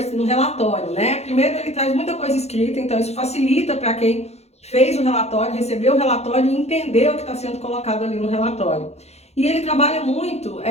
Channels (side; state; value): right; late; 0.31 ms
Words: no relatório, né? Primeiro, ele traz muita coisa escrita, então isso facilita para quem fez o relatório, recebeu o relatório e entender o que está sendo colocado ali no relatório. E ele trabalha muito